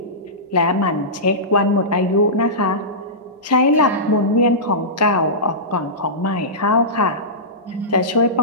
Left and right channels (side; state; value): both; normal; correlation -0.18